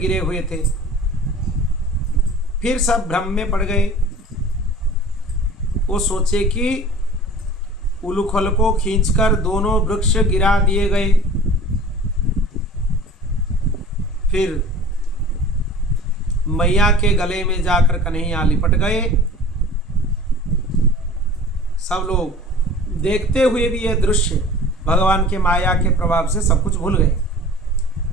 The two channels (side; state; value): both; normal; correlation 0.42